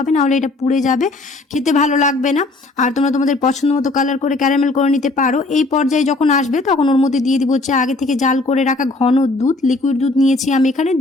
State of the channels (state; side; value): quieter; right; 3.1 dB